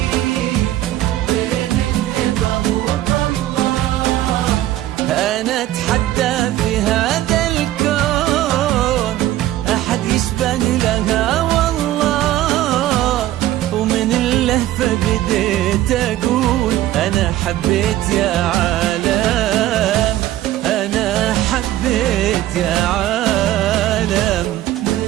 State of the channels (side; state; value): left; quieter; 14.2 dB